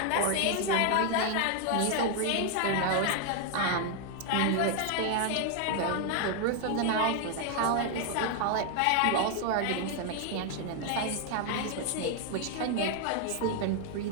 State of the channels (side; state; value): both; different; correlation 0.00